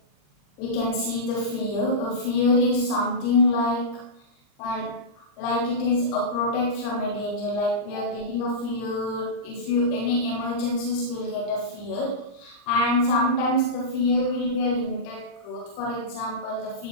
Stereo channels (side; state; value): right; late; 39 ms